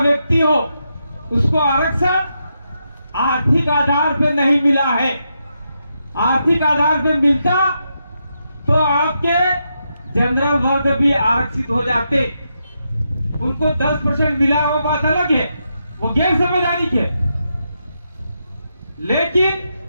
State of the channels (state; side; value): inverted; both; correlation -0.83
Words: हो, उसको आरक्षण आर्थिक आधार पे नहीं मिला है। आर्थिक आधार पे मिलता तो आपके जनरल वर्ग भी आरक्षित हो जाते। उनको 10% मिला, वो बात अलग है, वो गैर समझदारी के। लेकिन